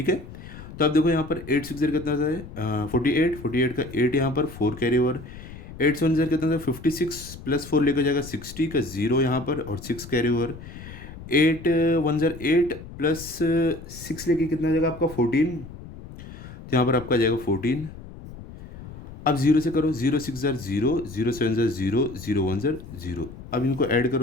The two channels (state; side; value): noise; left; rumble, 14 dB below the sound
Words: है, तो अब देखो यहाँ पर 8 6 कितना होता है 48 का 8 यहाँ पर 4 कैरी ओवर, 8 7 कितना था 56 प्लस 4 लेकर जाएगा 60 का 0 यहाँ पर और 6 कैरी ओवर, 8 1 8 प्लस 6 लेके कितना जाएगा आपका 14, तो यहाँ पर आपका जाएगा 14। अब 0 से करो, 0 6 0, 0 7 0, 0 1 0। अब इनको ऐड